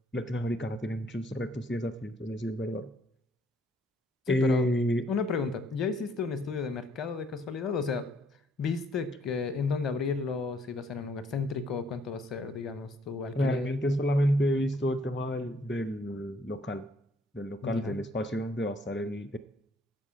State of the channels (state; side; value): normal; both; correlation 0.66